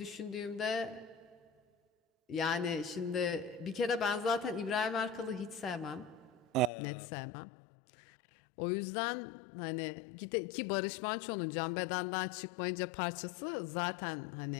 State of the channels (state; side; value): drops out; right; at 6.7 s